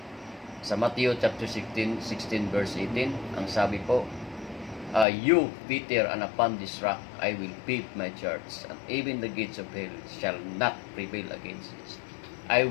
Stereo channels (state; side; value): drops out; right; at 5.1 s